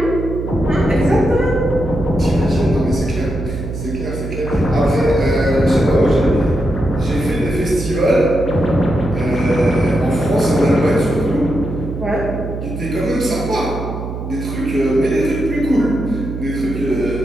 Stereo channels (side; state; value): right; noise; hum, 7 dB below the sound